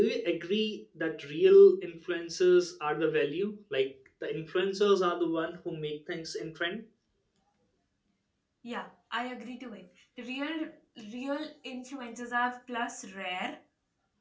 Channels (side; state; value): both; identical; correlation 1.00